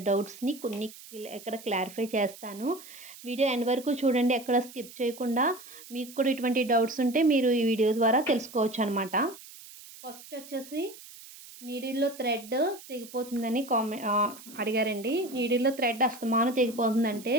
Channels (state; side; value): noise; right; hiss, 18 dB below the sound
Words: డౌట్స్‌ని కొన్ని ఇక్కడ క్లారిఫై చేస్తాను. వీడియో ఎండ్ వరకు చూడండి. ఎక్కడ స్కిప్ చేయకుండా. మీకు కూడా ఇటువంటి డౌట్స్ ఉంటే మీరు ఈ వీడియో ద్వారా తెలుసుకోవచ్చనమాట. ఫస్ట్ వచ్చేసి నీడిల్‌లో థ్రెడ్ తెగిపోతుందని అడిగారండి. నీడిల్‌లో థ్రెడ్ అస్తమానం తెగిపోతుందంటే